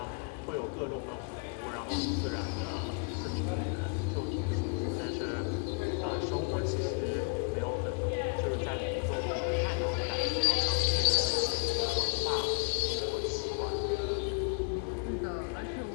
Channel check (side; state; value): right; quieter; 38.2 dB